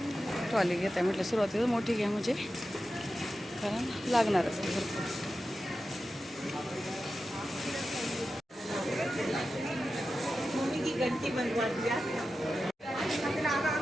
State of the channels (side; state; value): both; normal; correlation 0.92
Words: ट्रॉली घेत आहे म्हटलं, सुरुवातीला मोठी घ्या म्हणजे, कारण लागणारच आहे भरपूर. घंटी बनवा दिया.